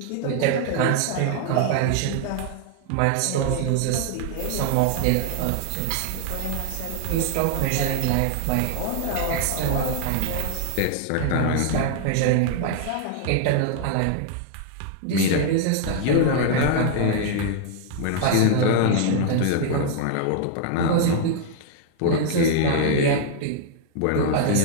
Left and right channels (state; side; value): different; both; correlation 0.00